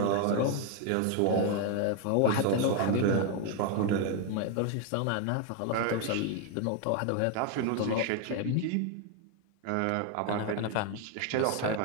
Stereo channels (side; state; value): both; different; correlation 0.01